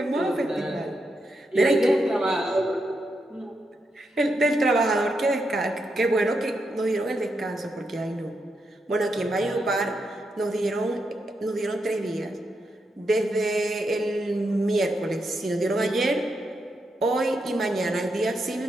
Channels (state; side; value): normal; both; correlation 0.83